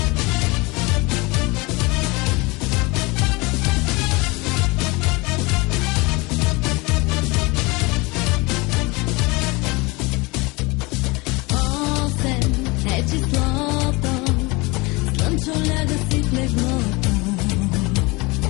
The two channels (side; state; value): right; quieter; 25.1 dB